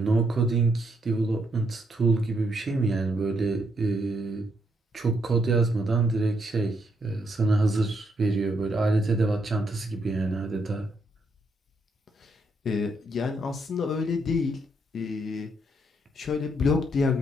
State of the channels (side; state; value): both; normal; correlation 0.76